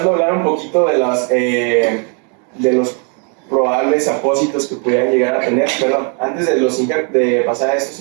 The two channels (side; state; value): left; quieter; 38.9 dB